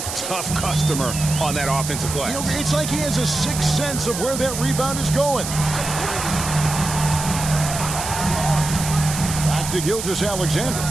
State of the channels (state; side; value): noise; right; hiss, 6 dB below the sound